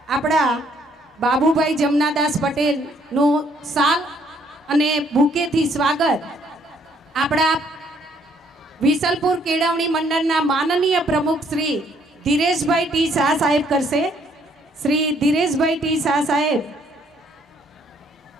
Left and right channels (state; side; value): normal; both; correlation 0.66